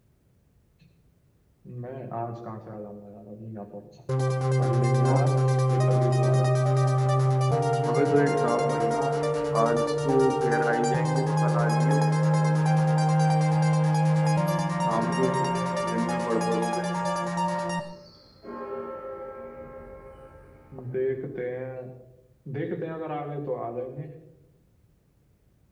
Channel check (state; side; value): identical; both; correlation 1.00